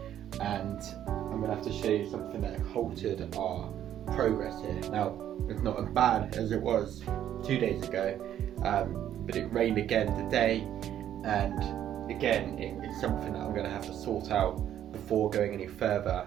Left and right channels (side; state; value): left; quieter; 10.9 dB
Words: and I'm going to have to show you something that halted our progress here. Now, it's not as bad as it was 2 days ago, but it rained again today, and again it's something that I'm going to have to sort out before going any